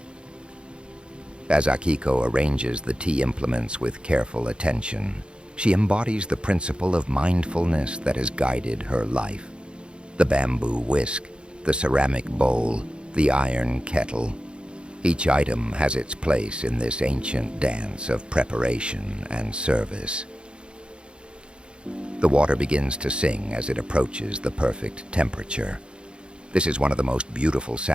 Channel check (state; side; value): late; left; 0.054 ms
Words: As Akiko arranges the tea implements with careful attention, she embodies the principle of mindfulness that has guided her life. The bamboo whisk, the ceramic bowl, the iron kettle. Each item has its place in this ancient dance of preparation and service. The water begins to sing as it approaches the perfect temperature. This is one of the most beautiful